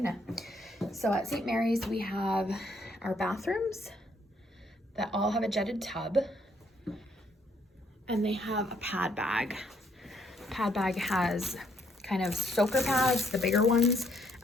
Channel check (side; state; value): both; normal; correlation 0.70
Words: So at St. Mary's, we have our bathrooms that all have a jetted tub, and they have a pad bag. Pad bag has kind of soaker pads, the bigger ones,